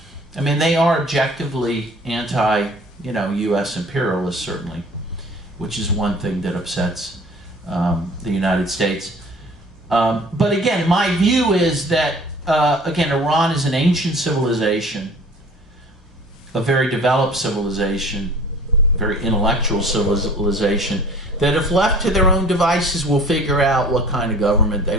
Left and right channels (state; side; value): normal; both; correlation 0.48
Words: I mean, they are objectively anti, you know, U.S. imperialists, certainly, which is one thing that upsets the United States. But again, my view is that, again, Iran is an ancient civilization, a very developed civilization, very intellectual civilization, that if left to their own devices will figure out what kind of government they